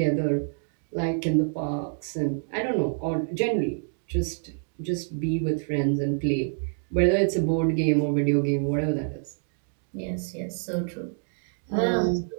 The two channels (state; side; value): silent; left; digital silence